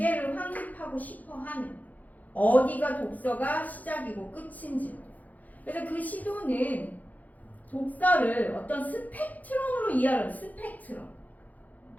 확립하고 싶어 하는. 어디가 독서가 시작이고 끝인지. 그래서 그 시도는 독서를 어떤 스펙트럼으로 이해하는 스펙트럼.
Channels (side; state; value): right; late; 0.079 ms